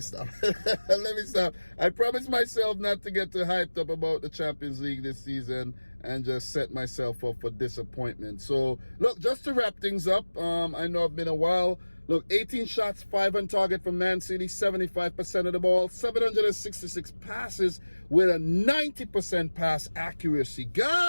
I promised myself not to get too hyped up about the Champions League this season and just set myself up for disappointment. So, look, just to wrap things up, I know it's been a while. Look, 18 shots, 5 on target from Man City, 75% of the ball, 766 passes with a 90% pass accuracy.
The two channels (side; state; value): both; inverted; correlation -1.00